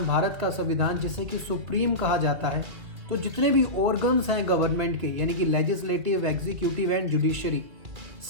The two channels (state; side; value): late; left; 2.3 ms